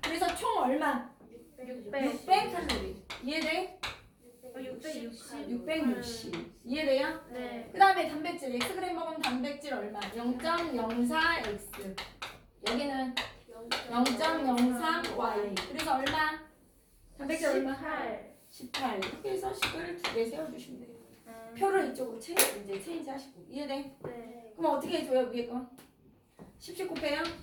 그래서 총 얼마? 600 칼로리. 이해돼? 660. 660. 이해돼요? 네. 그 다음에 단백질. Xg 먹으면 단백질 얼마? 0.04X. 여기는 0.03Y. 그래서 얼마? 단백질 얼마? 18. 18. 이렇게 해서 식을 2개 세워주시면 돼요. 표를 이쪽으로 체인지 하시고. 이해돼? 네. 그럼 어떻게 해줘요? 위에 거? 10 곱해요?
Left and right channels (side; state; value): both; identical; correlation 1.00